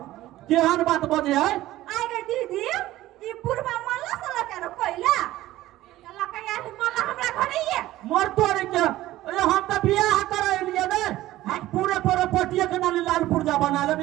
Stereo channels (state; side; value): quieter; left; 15.7 dB